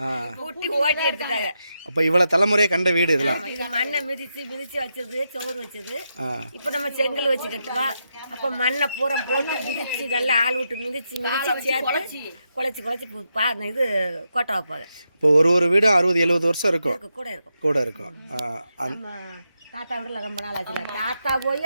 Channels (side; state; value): both; inverted; correlation -0.85